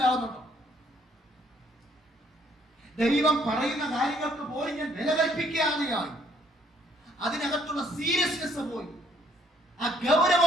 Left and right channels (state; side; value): normal; both; correlation 0.65